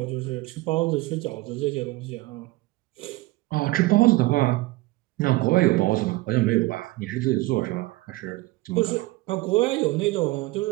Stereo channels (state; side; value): quieter; left; 20.2 dB